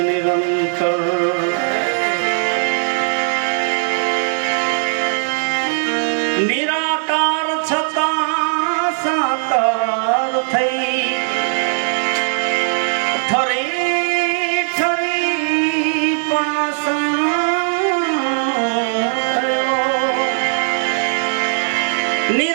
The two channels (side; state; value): left; silent; 62 dB below the other